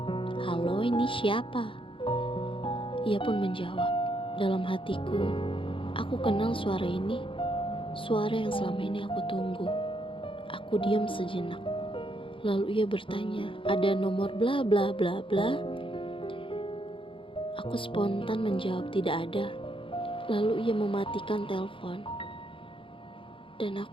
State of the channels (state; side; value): late; right; 0.25 ms